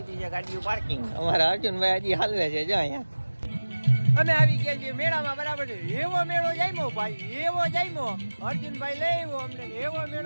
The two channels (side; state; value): both; inverted; correlation -1.00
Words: છે ગાડીઓ પાર્કિંગ. અમારા અર્જુનભાઈ હજી હાલવે છે જો અહીંયા. અમે આવી ગયા છીએ મેળામાં બરાબર. એવો મેળો જામ્યો ભાઈ, એવો જામ્યો. અર્જુનભાઈ લઈ આવ્યો અમને. એવો